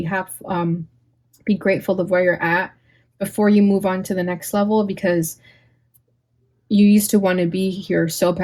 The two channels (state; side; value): identical; both; correlation 1.00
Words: grateful of where you're at before you move on to the next level, because you used to want to be here so